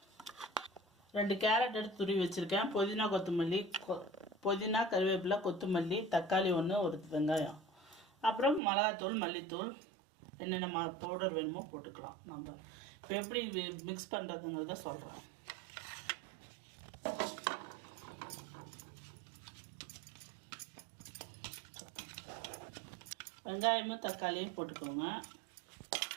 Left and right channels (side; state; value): left; drops out; at 8.6 s